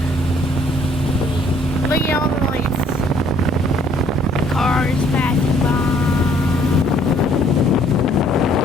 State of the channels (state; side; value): normal; both; correlation 0.62